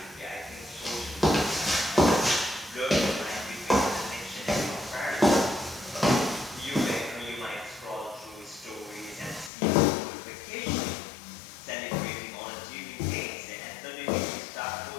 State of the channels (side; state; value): right; drops out; at 9.5 s